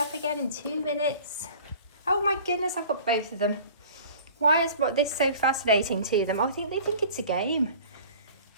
again in 2 minutes? Oh my goodness, I've got both of them. Why is this so fascinating to them? I think they think it's a game.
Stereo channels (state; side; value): inverted; both; correlation -0.45